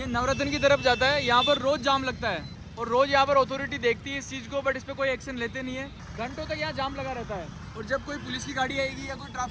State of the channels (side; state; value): both; identical; correlation 1.00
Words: नवरत्न की तरफ जाता है। यहाँ पर रोज जाम लगता है और रोज यहाँ पर अथॉरिटी देखती है इस चीज को, बट इस पर कोई एक्शन लेते नहीं है। घंटों तक यहाँ जाम लगा रहता है और जब कोई पुलिस की गाड़ी आएगी या कोई